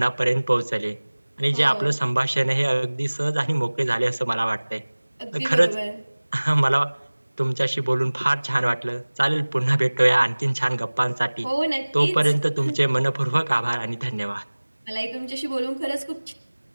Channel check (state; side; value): inverted; both; correlation -1.00